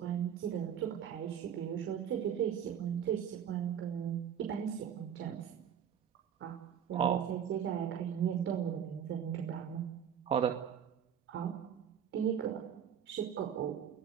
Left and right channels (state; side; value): quieter; left; 8.7 dB